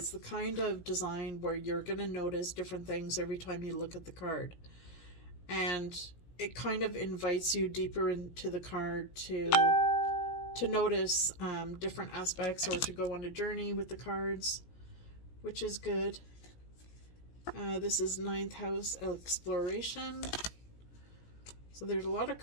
the kind of design where you're going to notice different things every time you look at the card, and it kind of invites you deeper into the card to notice different aspects, or to go on a journey with the cards, which is good. This is ninth house, Exploration. So there's a lot of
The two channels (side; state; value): right; late; 17 ms